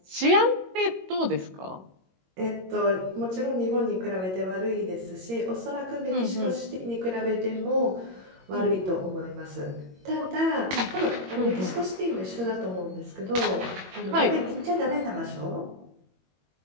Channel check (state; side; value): late; left; 21 ms